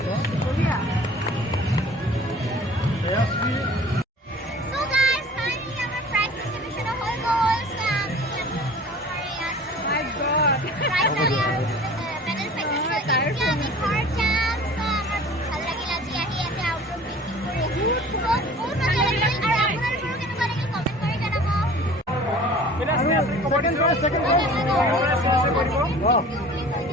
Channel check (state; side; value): normal; both; correlation 0.45